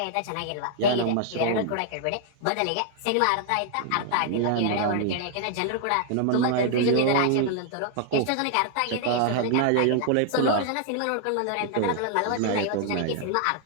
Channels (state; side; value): different; both; correlation 0.00